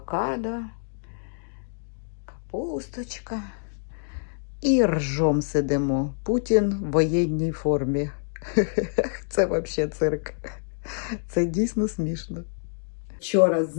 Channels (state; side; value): silent; right; 61 dB below the other